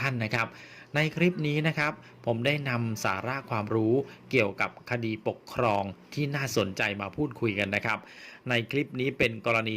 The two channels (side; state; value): both; identical; correlation 1.00